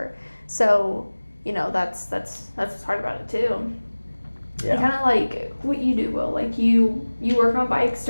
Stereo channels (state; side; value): inverted; both; correlation -1.00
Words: So, that's what's hard about it too. Yeah. And kind of like what you do, Will. Like you work on bikes